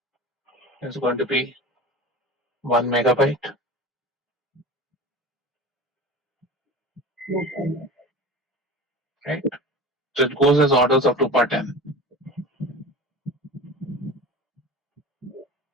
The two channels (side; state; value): both; normal; correlation 0.34